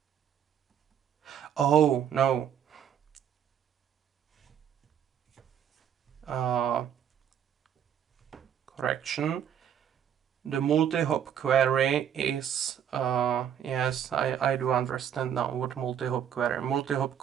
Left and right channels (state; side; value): quieter; left; 9.1 dB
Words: Oh, no. Correction. The multi-hop query is, yes, I do understand now what multi-hop query. Multi-hop